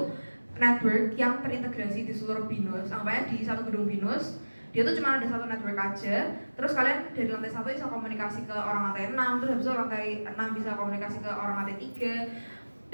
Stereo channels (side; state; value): both; inverted; correlation -1.00